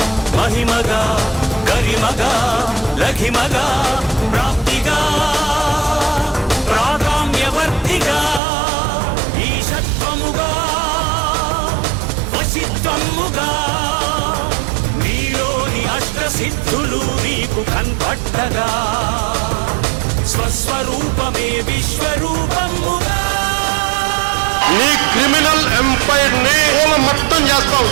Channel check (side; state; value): left; drops out; at 8.4 s